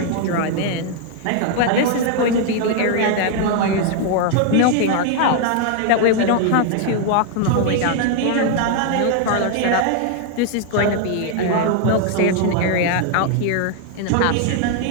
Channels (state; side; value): different; both; correlation 0.00